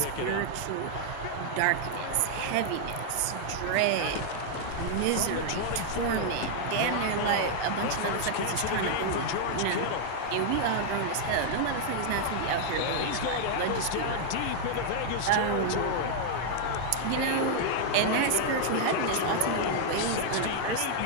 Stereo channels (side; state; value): both; different; correlation -0.01